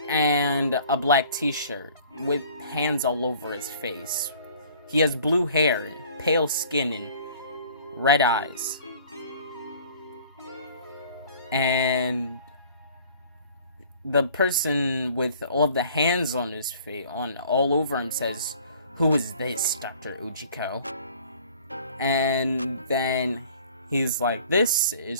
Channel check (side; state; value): both; inverted; correlation -0.51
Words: and a black t-shirt with hands all over his face. He has blue hair, pale skin, and red eyes. And the person with all of the hands on his face, all over him, says, "Who is this, Dr. Ujiko?" And then he's like, "This